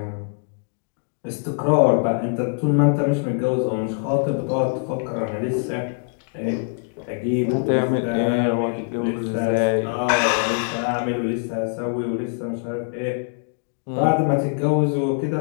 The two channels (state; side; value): silent; right; 58 dB below the other